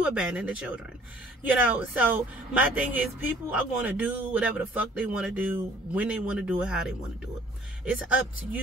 abandoned the children. You know, so my thing is, people are going to do whatever the fuck they want to do, when they want to do it, how they want to do it. It's up to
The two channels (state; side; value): normal; both; correlation 0.56